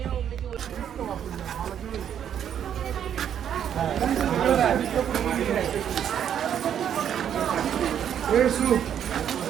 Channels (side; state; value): left; quieter; 9.2 dB